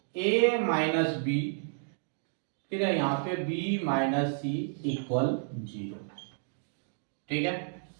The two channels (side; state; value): left; silent; digital silence